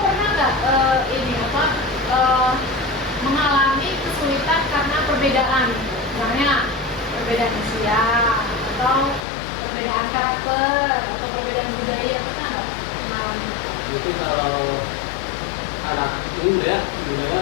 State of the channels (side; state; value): right; drops out; at 9.2 s